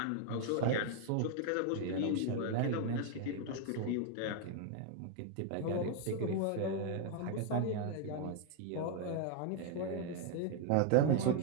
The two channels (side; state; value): both; different; correlation 0.00